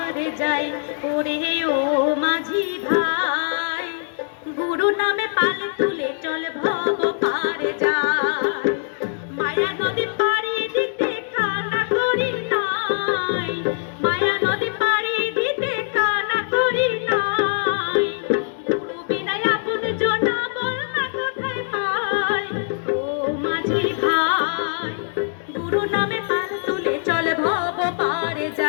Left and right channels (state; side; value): silent; right; digital silence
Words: যাই। ওরে ও মাঝি ভাই, গুরু নামে পালে তুলে চল ভব পারে যাই। মায়া নদী পাড়ি দিতে কানা করি নাই, মায়া নদী পাড়ি দিতে কানা করি নাই। গুরু বিনায় আপন জনা বল না কোথায় পাই। ও মাঝি ভাই, গুরু নামে পাল তুলে চল ভব পারে